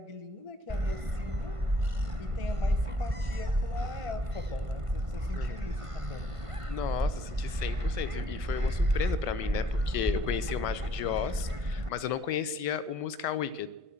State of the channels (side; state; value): left; late; 1.5 ms